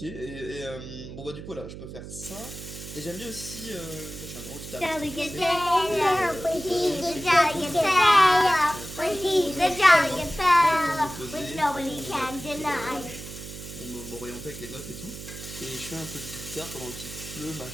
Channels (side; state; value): right; noise; hum, 12 dB below the sound